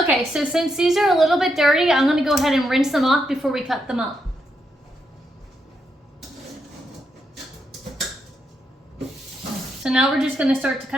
so since these are a little bit dirty, I'm gonna go ahead and rinse them off before we cut them up. So now we're just gonna start to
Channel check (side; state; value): both; normal; correlation 0.81